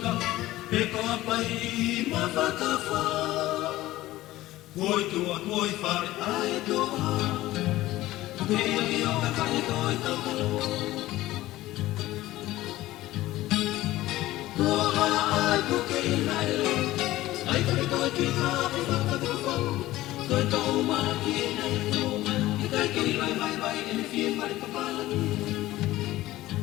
peko apai ma whakawha. Koi tua, koi whare ai toa. Kei aki o ka kai koi taukalo. Kua ai puke i naile, ai kare koi ki hape whakatawhau. Koi tau maa ki e nei tōma, i kai kei lai vai vai e ne whie mare papalani.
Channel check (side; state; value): right; quieter; 16.5 dB